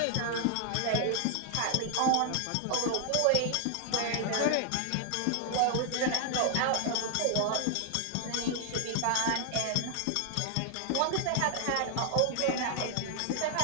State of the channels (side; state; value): both; different; correlation 0.00